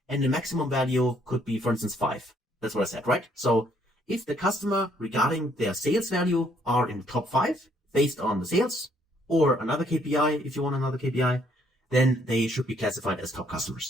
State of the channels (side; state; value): both; normal; correlation 0.67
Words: And the maximum value could be, for instance, 5. That's what I said, right? So if the customer regarding their sales value are in the top 5 based on the sales, or another KPI, if you want another KPI, then they should be classified as top